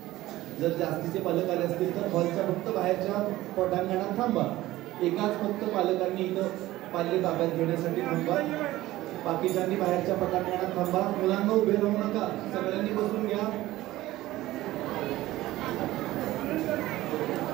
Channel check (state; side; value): quieter; left; 16.6 dB